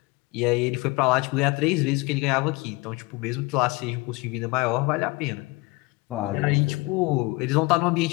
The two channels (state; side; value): quieter; right; 24.4 dB